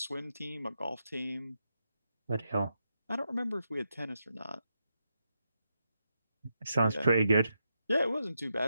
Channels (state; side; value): inverted; both; correlation -0.84